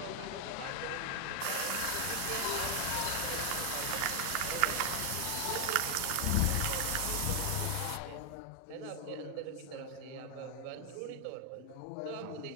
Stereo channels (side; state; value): both; different; correlation 0.00